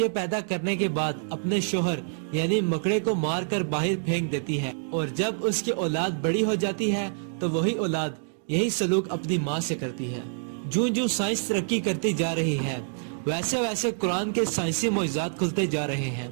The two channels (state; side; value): silent; left; digital silence